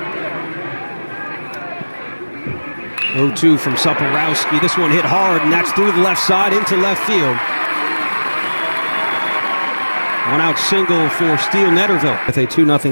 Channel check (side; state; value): both; inverted; correlation -1.00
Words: 0-2 from Soporowski. This one hit hard, and that's through the left side into left field. One out single for Steele Netterville with a